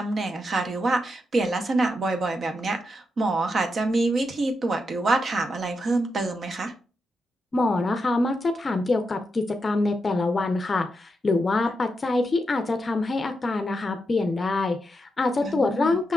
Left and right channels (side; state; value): both; normal; correlation 0.85